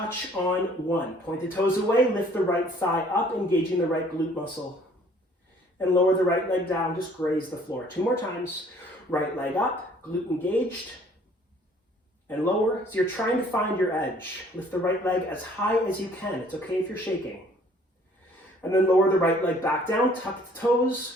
on 1. Point the toes away, lift the right thigh up, engaging the right glute muscle. And lower the right leg down, just graze the floor. 2 more times. Right leg up, glute engaged. And lower, so you're trying to find your edge. Lift the right leg as high as you can. It's okay if you're shaking. And then lower the right leg back down, tuck the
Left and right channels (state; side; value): normal; both; correlation 0.58